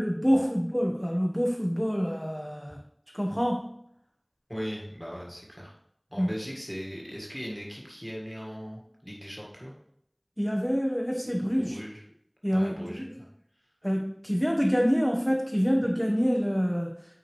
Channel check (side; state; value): both; identical; correlation 1.00